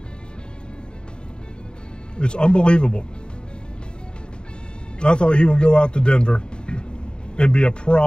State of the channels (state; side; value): late; right; 0.050 ms